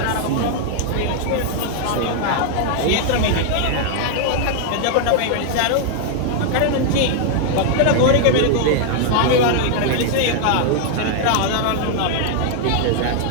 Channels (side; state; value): both; different; correlation 0.00